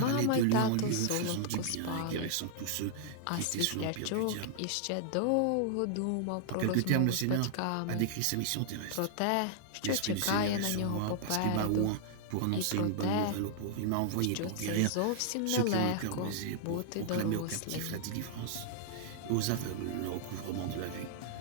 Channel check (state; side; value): different; both; correlation -0.01